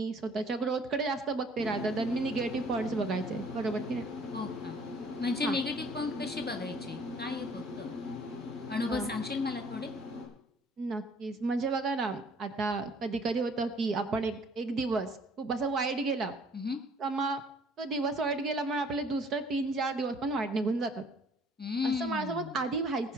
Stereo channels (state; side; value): normal; both; correlation 0.57